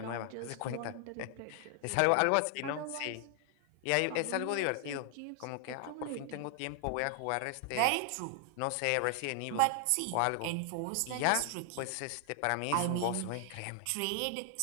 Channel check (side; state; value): both; different; correlation 0.00